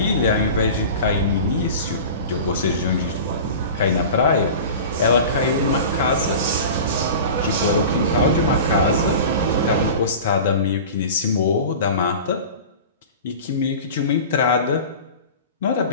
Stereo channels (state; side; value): inverted; both; correlation -0.35